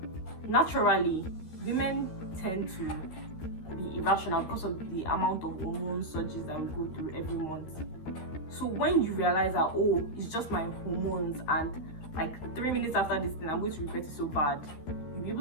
naturally women tend to be irrational because of the amount of hormone surges that we go through every month. So when you realize that, oh, it's just my hormones, and like 3 minutes after this thing I'm going to regret it so bad, you'll be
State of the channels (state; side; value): late; right; 13 ms